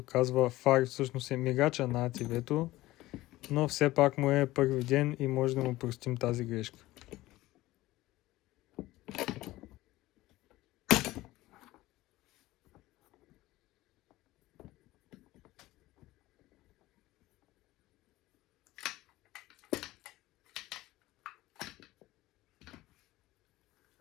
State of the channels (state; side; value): quieter; right; 17.6 dB